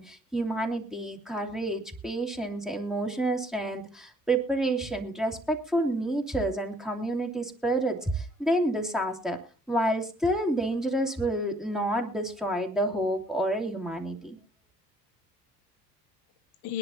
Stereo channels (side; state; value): both; normal; correlation 0.62